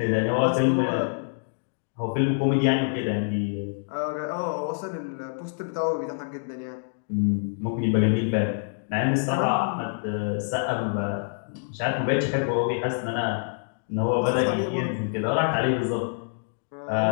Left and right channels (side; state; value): right; silent; digital silence